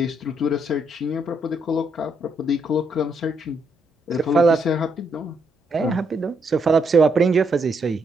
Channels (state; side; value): normal; both; correlation 0.75